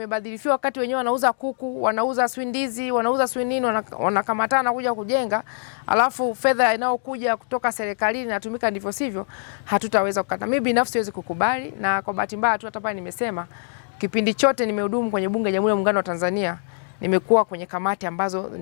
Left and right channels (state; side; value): silent; right; digital silence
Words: wakati wenyewe wanauza kuku, wanauza swindizi, wanauza swinini, wanakamatana kuja kujenga, alafu fedha inayokuja kutoka serikalini inatumika ndivyo sivyo, hatutaweza kukata. Mimi binafsi siwezi kukubali, na kwa bahati mbaya tu hata pale nimesema kipindi chote nimehudumu kwenye bunge la Jamhuri ya Muungano wa Tanzania, nimekuwa kwenye kamati ambazo